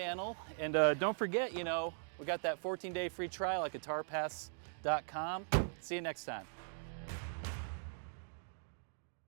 And don't forget, you know, we got that 14-day free trial at guitarpass.com. See you next time.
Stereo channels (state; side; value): silent; left; digital silence